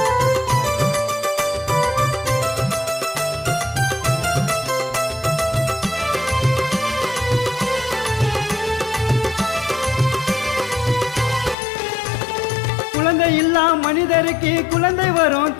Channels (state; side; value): drops out; right; at 11.6 s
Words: குழந்தை இல்லா மனிதருக்கு குழந்தை வரும்